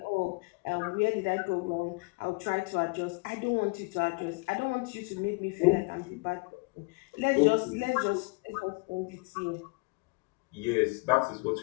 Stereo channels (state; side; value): quieter; right; 29.3 dB